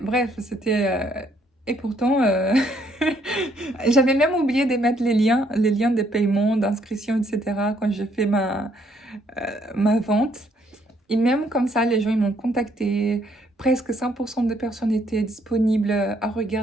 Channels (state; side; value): normal; both; correlation 0.69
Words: bref, c'était... Et pourtant, j'avais même oublié de mettre les liens de paiement, d'inscription, etc. quand j'ai fait ma vente. Et même comme ça, les gens, ils m'ont contacté. Presque 100% des personnes étaient disponibles à